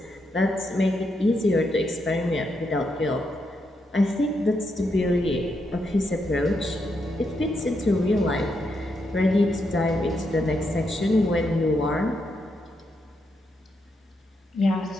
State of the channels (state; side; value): normal; both; correlation 0.81